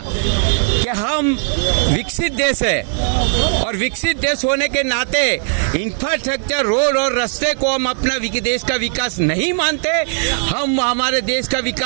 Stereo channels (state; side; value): silent; left; 61 dB below the other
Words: कि हम विकसित देश है और विकसित देश होने के नाते इंफ्रास्ट्रक्चर, रोड और रास्ते को हम अपना देश का विकास नहीं मानते। हम हमारे देश का